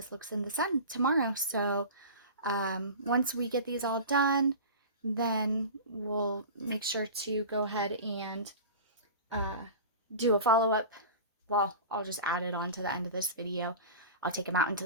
looks in the sun tomorrow. So once we get these all done, then we'll make sure to go ahead and do a follow-up. Well, I'll just add it on to the end of this video. I'll take them out into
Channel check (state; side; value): inverted; both; correlation -0.34